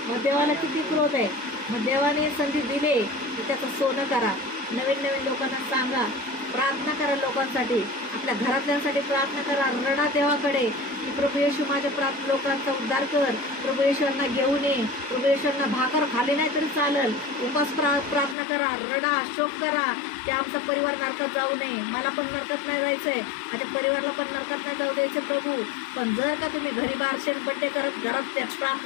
मग देवाला किती क्रोध आहे. मग देवाने संधी दिले की त्याचं सोनं करा, नवीन नवीन लोकांना सांगा, प्रार्थना करा लोकांसाठी, आपल्या घरातल्यांसाठी प्रार्थना करा, रडा देवाकडे की प्रभू येशू माझ्या लोकांचा उद्धार कर, प्रभू येशूंना घेऊन ये, प्रभू येशूंना भाकर खाली नाही तरी चालेल, उपास प्रार्थना करा, रडा शोक करा की आमचा परिवार नरकात जाऊ नये, मला पण नरकात नाही जायचंय, माझ्या परिवाराला पण नरकात नाही जाऊ द्यायचं प्रभू. पण जर का तुम्ही घरी बारशेन बड्डे करत घरात त्या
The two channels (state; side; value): drops out; right; at 18.4 s